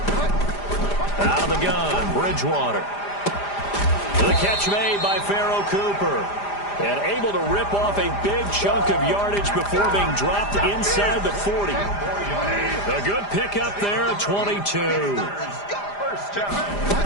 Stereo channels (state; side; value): late; right; 5.0 ms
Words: Out of the gun, Bridgewater. The catch made by Pharaoh Cooper. And able to rip off a big chunk of yardage before being dropped inside the 40. A good pickup there at 22.